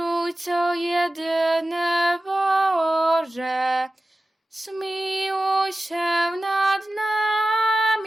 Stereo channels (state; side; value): normal; both; correlation 0.94